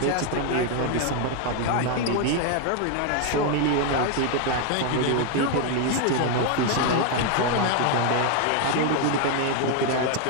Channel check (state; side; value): different; both; correlation 0.01